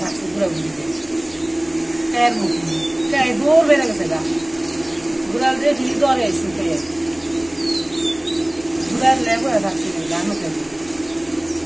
ঘুরে ঘুরে পেয়ের মুখি পেয়ে দৌড় বেড়ে গেছে গা ঘুরাল দেখি দরে এসে পেয়ে ঘুরার লেগে থাকছে গান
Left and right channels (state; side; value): noise; left; rumble, 26 dB below the sound